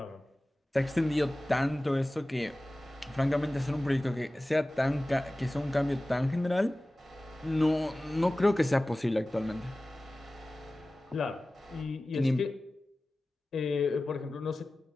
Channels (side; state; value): both; normal; correlation 0.97